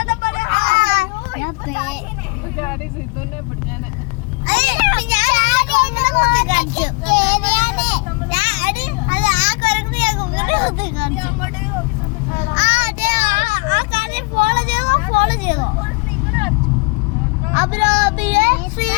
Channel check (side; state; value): right; quieter; 28.7 dB